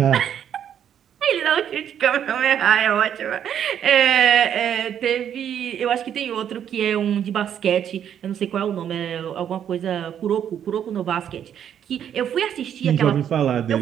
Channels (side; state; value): left; quieter; 9.3 dB